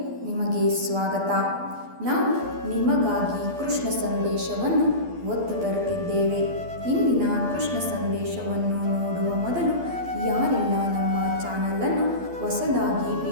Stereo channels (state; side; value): late; left; 12 ms